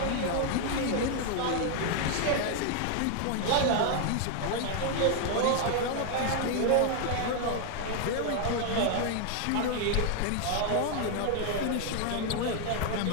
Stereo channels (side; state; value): both; different; correlation 0.00